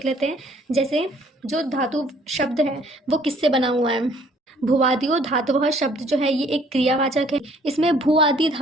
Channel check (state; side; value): normal; both; correlation 0.59